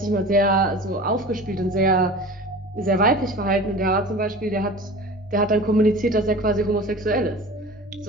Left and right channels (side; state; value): both; normal; correlation 0.37